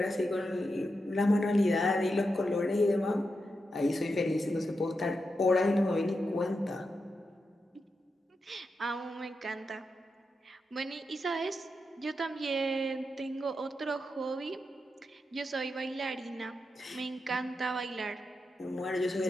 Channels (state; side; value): normal; both; correlation 0.87